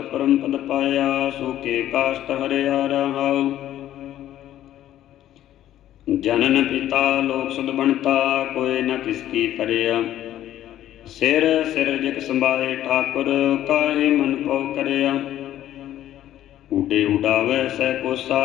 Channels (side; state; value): right; quieter; 12.5 dB